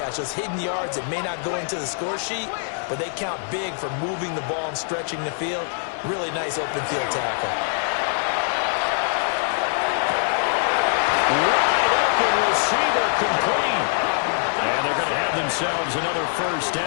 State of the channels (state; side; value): silent; right; 61 dB below the other